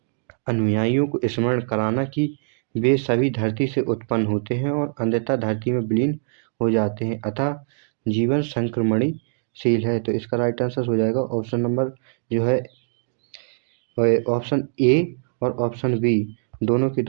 अनुयायियों को स्मरण कराना कि वे सभी धरती से उत्पन्न होते हैं और अंततः धरती में विलीन हो जाते हैं, अतः जीवन संक्रमणीशील है। तो इसका राइट आंसर हो जाएगा ऑप्शन नंबर जो है ऑप्शन ए और ऑप्शन बी दोनों के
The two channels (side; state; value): left; silent; digital silence